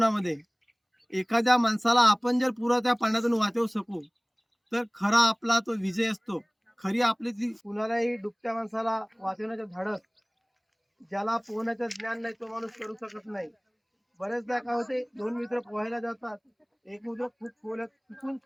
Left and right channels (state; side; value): identical; both; correlation 1.00